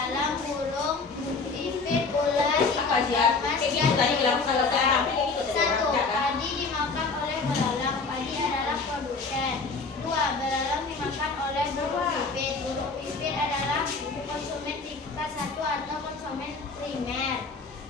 burung, pipit, ular, Apa ikan sih? emas, Kayak gitu tadi bilang kalau saya rapi kayak gitu tadi. Satu, Ya, kan? padi dimakan oleh belalang. Padi adalah produsen. 2, belalang dimakan oleh burung pipit. Burung pipit adalah konsumen tingkat 1 atau konsumen primer.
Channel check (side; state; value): right; quieter; 4.2 dB